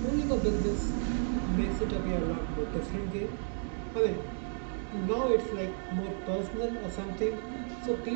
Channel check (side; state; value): left; silent; 56 dB below the other